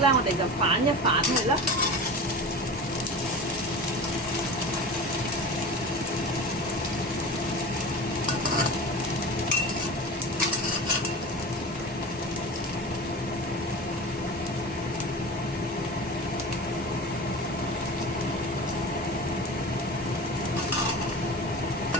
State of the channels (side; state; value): both; normal; correlation 0.31